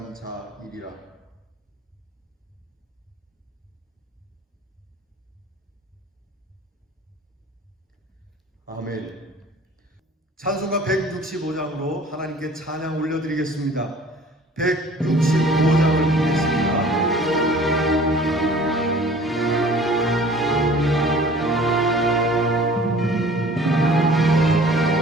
자이리라. 아멘. 찬송가 165장으로 하나님께 찬양 올려드리겠습니다. 165장을 보겠습니다.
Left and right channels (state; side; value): normal; both; correlation 0.48